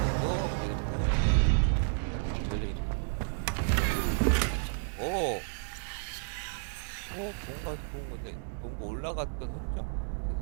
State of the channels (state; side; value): silent; left; digital silence